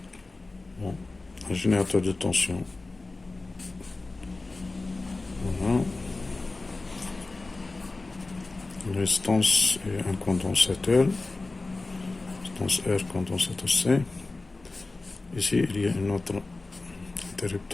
Bon, un générateur de tension. Voilà. Une résistance et un condensateur. Résistance R, condensateur C. Ici, il y a un autre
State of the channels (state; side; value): quieter; right; 3.4 dB